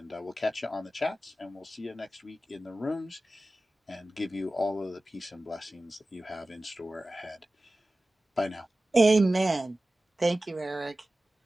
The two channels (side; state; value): both; normal; correlation 0.96